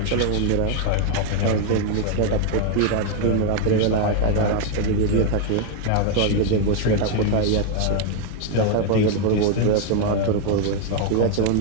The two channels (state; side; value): different; both; correlation 0.01